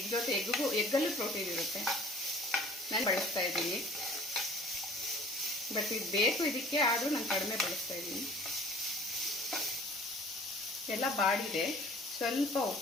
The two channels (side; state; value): both; normal; correlation 0.49